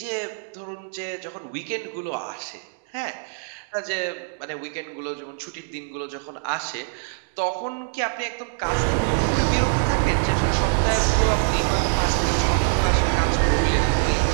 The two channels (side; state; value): left; silent; digital silence